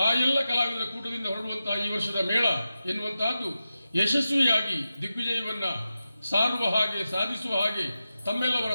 ಆ ಎಲ್ಲ ಕಲಾವಿದರ ಕೂಟದಿಂದ ಹೊರಡುವಂತಹ ಈ ವರ್ಷದ ಮೇಳ ಎನ್ನುವಂತಹದ್ದು ಯಶಸ್ವಿಯಾಗಿ ದಿಗ್ವಿಜಯವನ್ನ ಸಾರುವ ಹಾಗೆ ಸಾಧಿಸುವ ಹಾಗೆ ತಮ್ಮೆಲ್ಲವರ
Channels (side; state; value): both; inverted; correlation -0.92